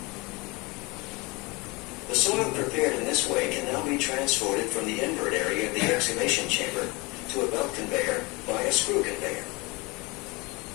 The soil prepared in this way can now be transported from the invert area of the excavation chamber to a belt conveyor by a screw conveyor.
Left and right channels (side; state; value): right; quieter; 25.9 dB